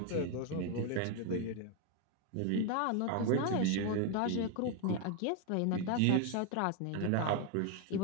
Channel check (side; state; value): both; different; correlation 0.01